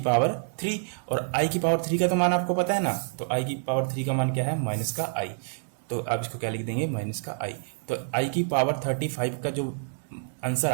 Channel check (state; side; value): silent; left; 60 dB below the other